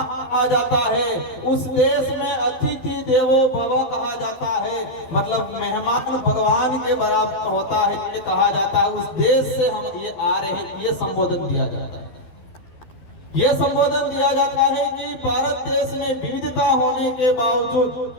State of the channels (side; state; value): right; late; 12 ms